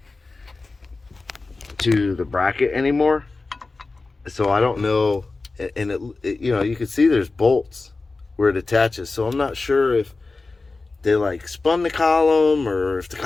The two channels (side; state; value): right; quieter; 3.6 dB